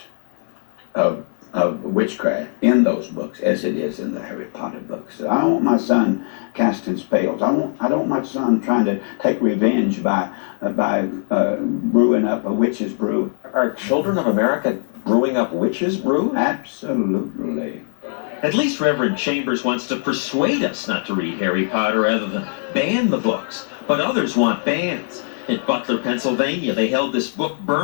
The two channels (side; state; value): right; silent; digital silence